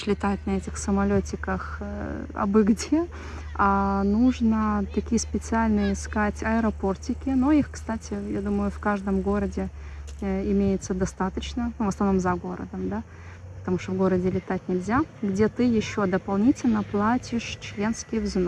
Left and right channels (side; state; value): both; identical; correlation 1.00